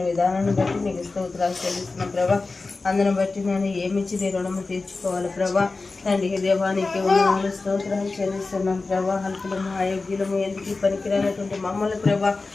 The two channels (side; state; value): right; quieter; 3.7 dB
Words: విధానాన్ని బట్టి నీకు స్తోత్రాలు చెల్లిస్తున్న ప్రభా. అందును బట్టి నేను ఏమిచ్చి నీ రుణము తీర్చుకోవాలి ప్రభా. తండ్రి దేవానికి వందనాలు స్తోత్రాలు చెల్లిస్తున్నాం ప్రభా. అల్పులము అయోగ్యులము ఎందుకు పనికిరానటువంటి మమ్మల్ని ప్రభా